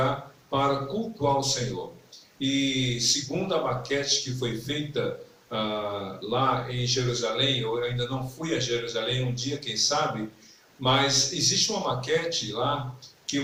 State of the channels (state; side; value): identical; both; correlation 1.00